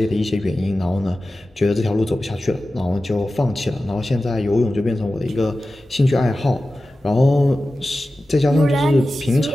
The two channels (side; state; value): both; normal; correlation 0.95